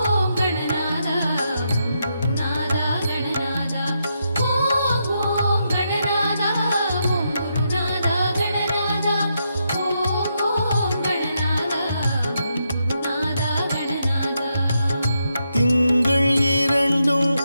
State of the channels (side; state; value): both; inverted; correlation -0.82